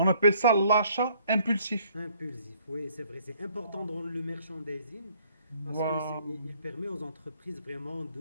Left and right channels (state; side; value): inverted; both; correlation -0.62